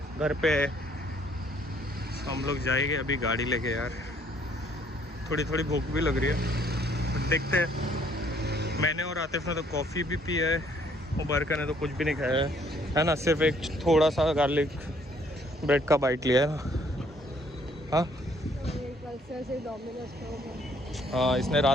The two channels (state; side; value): normal; both; correlation 0.64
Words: घर पे है। हम लोग जाएंगे अभी गाड़ी लेके यार, थोड़ी थोड़ी भूख भी लग रही है, देखते हैं। मैंने और आतिफ ने तो कॉफ़ी भी पी है, मुबारका ने तो कुछ भी नहीं खाया है ना, सिर्फ एक थोड़ा सा गार्लिक ब्रेड का बाइट लिया है ना। हाँ हाँ, इसने